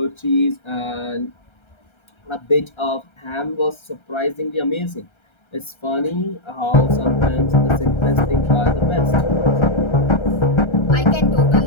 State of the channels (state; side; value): late; right; 1.3 ms